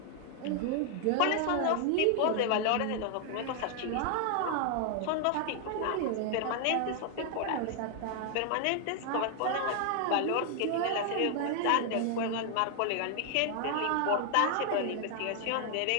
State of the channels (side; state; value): both; different; correlation 0.00